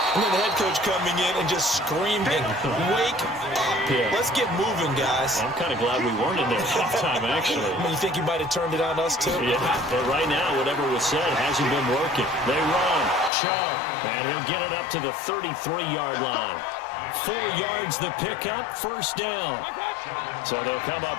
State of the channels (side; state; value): right; drops out; at 13.3 s